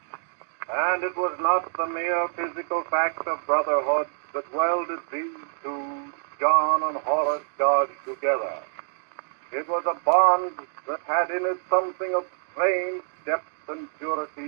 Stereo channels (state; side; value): silent; left; digital silence